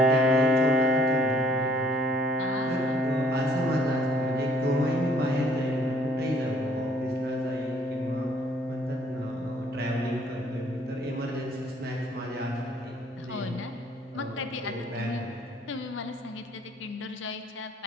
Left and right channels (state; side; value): normal; both; correlation 0.61